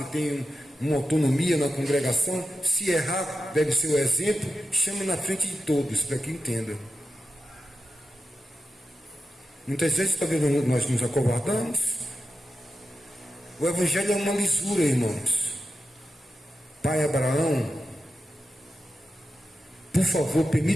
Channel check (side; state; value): both; normal; correlation 0.90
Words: tem uma autonomia na congregação, se errar, deve ser o exemplo, chame na frente de todos, para que entenda. Muitas vezes, talvez nós nos acovardamos. O evangelho é uma lisura, irmãos. Pai Abraão, por favor,